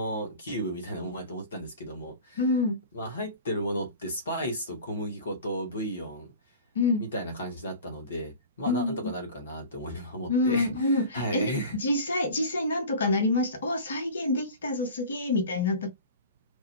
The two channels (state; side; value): inverted; both; correlation -0.39